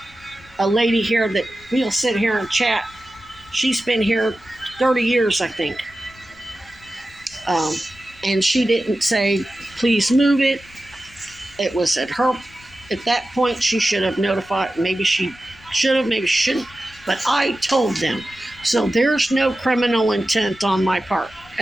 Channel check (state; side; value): noise; left; rumble, 25 dB below the sound